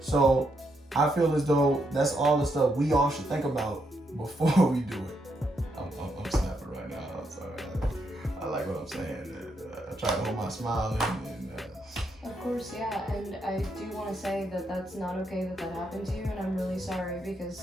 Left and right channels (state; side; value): normal; both; correlation 0.78